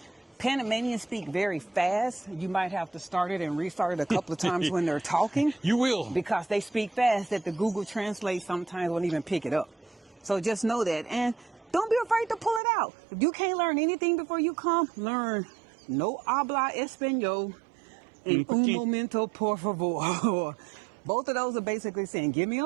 Panamanians speak very fast. You might have to start it and restart it a couple of times when they're talking. You will. Because they speak fast that the Google Translate sometimes won't even pick it up. So just know that. And don't be afraid to pull it out. If you can't learn anything before you come, learn no habla español and un momento por favor. Both of those are basically saying, give me a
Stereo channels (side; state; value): left; drops out; at 12.6 s